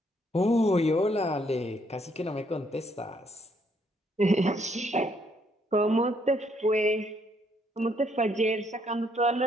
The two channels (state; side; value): normal; both; correlation 0.70